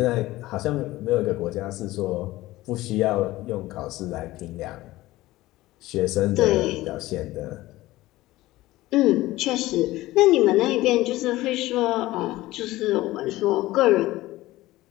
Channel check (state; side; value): quieter; right; 17.5 dB